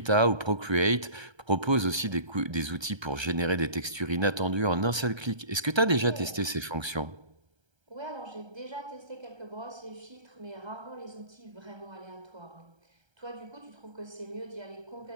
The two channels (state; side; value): late; left; 1.3 ms